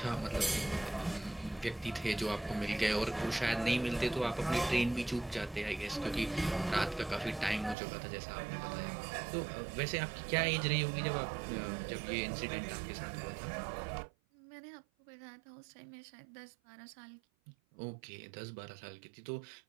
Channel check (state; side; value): drops out; left; at 7.8 s